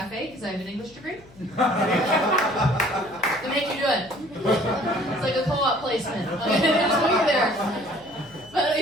because I have an English degree. They make you do it. It's like a co-op placement. Just wait there. But I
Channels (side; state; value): left; noise; hum, 25 dB below the sound